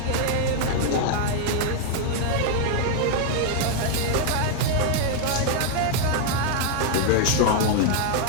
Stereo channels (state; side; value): different; both; correlation 0.00